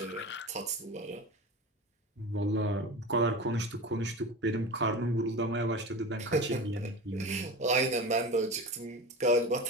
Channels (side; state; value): both; normal; correlation 0.30